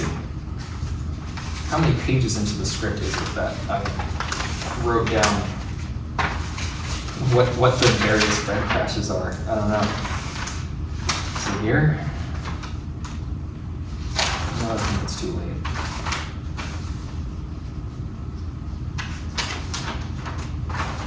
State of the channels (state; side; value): identical; both; correlation 1.00